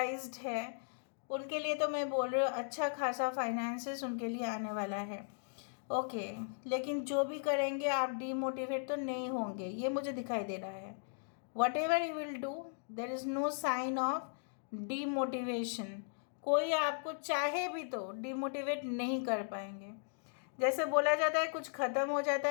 है उनके लिए तो मैं बोल रही हूँ अच्छा खासा फाइनेंसेस उनके लिए आने वाला है. ओके, लेकिन जो भी करेंगे आप डीमोटिवेट तो नहीं होंगे, ये मुझे दिखाई दे रहा है. Whatever you will do there is no sign of demotivation. कोई आपको चाहे भी तो डीमोटिवेट नहीं कर पाएंगे. जैसे बोला जाता है कुछ ख़त्म हो जाता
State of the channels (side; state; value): right; silent; digital silence